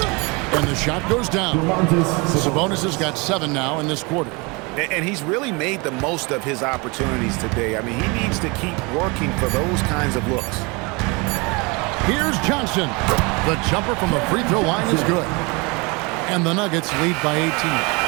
And the shot goes down. Sabonis has got 7 now in this quarter. And he's really made the most of his opportunities today. I mean, he needs to keep working for those kinds of looks. Here's Johnson. The jumper from the free throw line is good. And the Nuggets lead by 18.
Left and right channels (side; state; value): left; quieter; 28.0 dB